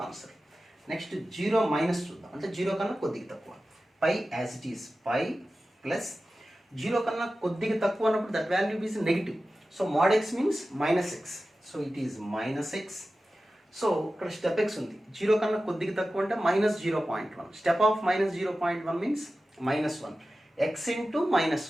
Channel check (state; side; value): normal; both; correlation 0.94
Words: answer. Next 0 minus చూద్దాం, అంటే 0 కన్నా కొద్దిగా తక్కువ, pi as it is pi plus 0 కన్నా కొద్దిగా తక్కువ అన్నప్పుడు that value is negative. So mod x means minus X, so it is minus X. So ఇక్కడ స్టెప్ ఎక్స్ ఉంది, 0 కన్నా కొద్దిగా తక్కువ అంటే minus 0.1, step of minus 0.1 means minus 1, x into minus